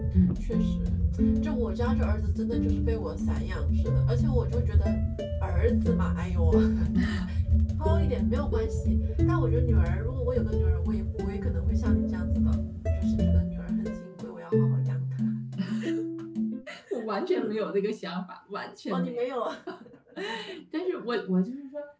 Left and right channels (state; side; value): identical; both; correlation 1.00